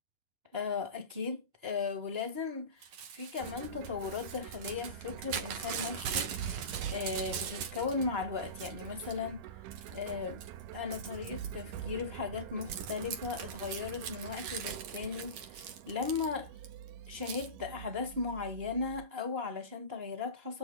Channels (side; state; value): left; late; 11 ms